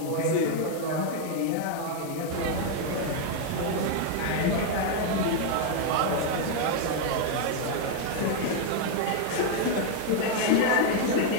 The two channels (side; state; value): both; different; correlation 0.00